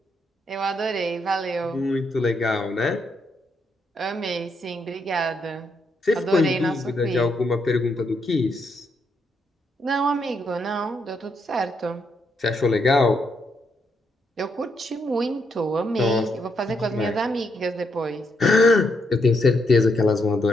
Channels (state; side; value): normal; both; correlation 0.78